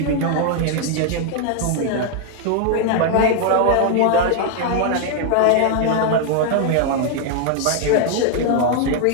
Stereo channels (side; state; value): both; different; correlation 0.00